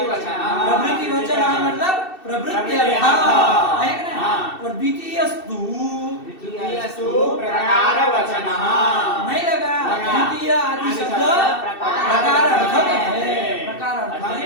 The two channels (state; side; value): late; right; 2.7 ms